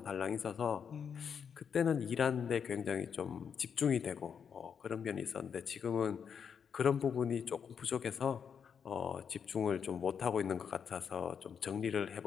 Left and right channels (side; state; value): right; quieter; 7.1 dB